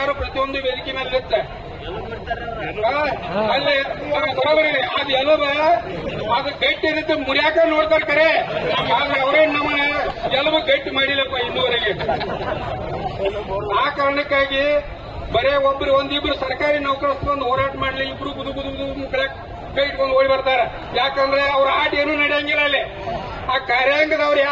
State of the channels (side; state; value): both; identical; correlation 1.00